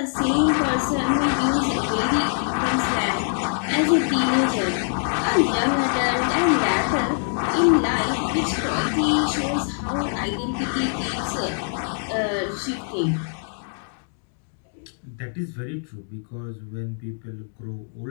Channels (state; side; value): silent; right; 60 dB below the other